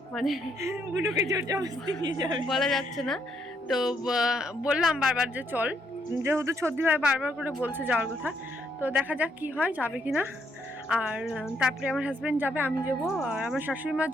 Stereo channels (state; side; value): normal; both; correlation 0.73